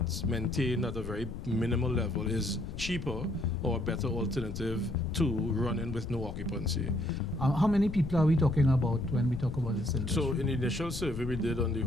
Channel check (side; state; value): left; noise; rumble, 7 dB below the sound